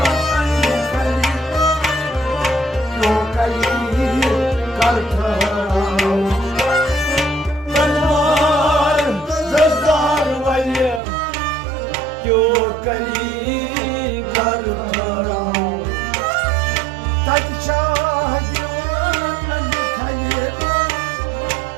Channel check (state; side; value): drops out; left; at 11.0 s